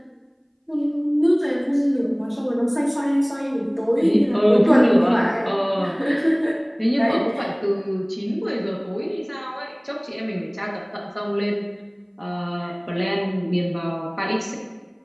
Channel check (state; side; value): identical; both; correlation 1.00